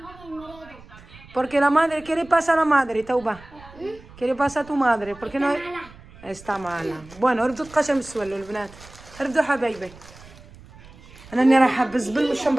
Porque la madre, ¿qué le pasa a la madre, توبة؟ ¿Qué le pasa a tu madre? Porque no está mala. Bueno, ردوا تقاشم السوالو البنات. ردوا حبايبي. أنا راني رايحة بالزبل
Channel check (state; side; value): noise; right; rumble, 21 dB below the sound